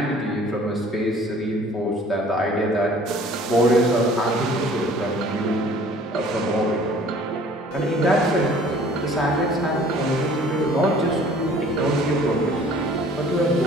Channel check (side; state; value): both; normal; correlation 0.52